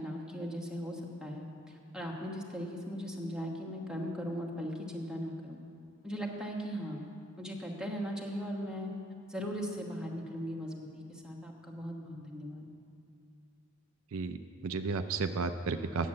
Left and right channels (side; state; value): both; normal; correlation 0.57